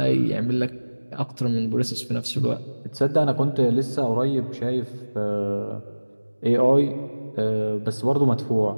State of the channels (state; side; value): inverted; both; correlation -1.00